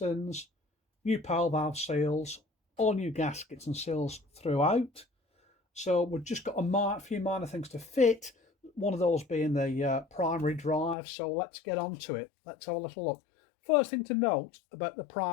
new power valve seals, all new gaskets and seals throughout. So we've just got a few minor things to fit, one of those being the primary drive. So let's get on to it. Let's have a little look. First thing to note about the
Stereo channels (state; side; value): drops out; right; at 11.0 s